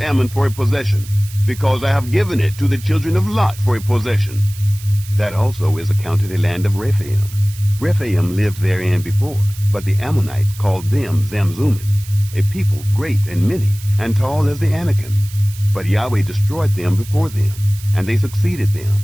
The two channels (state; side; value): noise; right; hiss, 17 dB below the sound